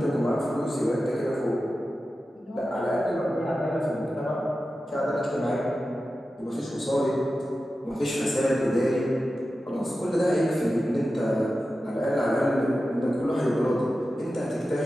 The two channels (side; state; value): both; normal; correlation 0.93